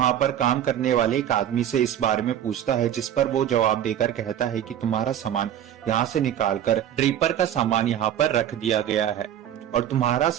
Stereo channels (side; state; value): left; quieter; 10.6 dB